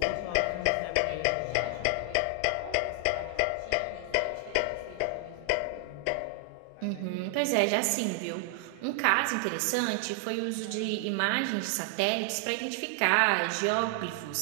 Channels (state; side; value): different; both; correlation 0.00